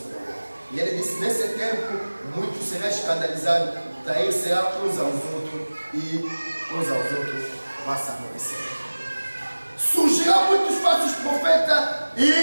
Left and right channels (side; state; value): both; inverted; correlation -1.00